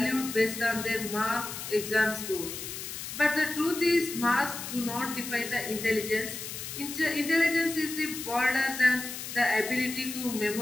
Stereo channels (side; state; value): left; noise; hiss, 8 dB below the sound